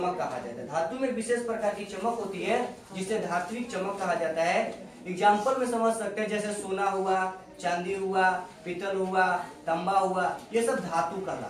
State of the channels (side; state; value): both; identical; correlation 1.00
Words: कहा जाता है। धातु में विशेष प्रकार की चमक होती है जिसे धात्विक चमक कहा जाता है। एग्जाम्पल में समझ सकते हैं, जैसे सोना हुआ, चांदी हुआ, पीतल हुआ, तांबा हुआ, ये सब धातु